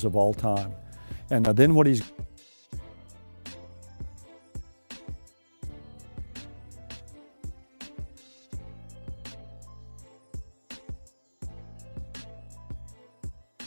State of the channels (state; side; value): inverted; both; correlation -1.00